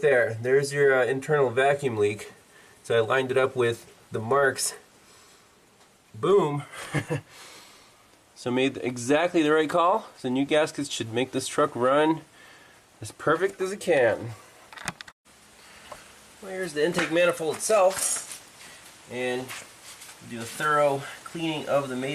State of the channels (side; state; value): both; identical; correlation 1.00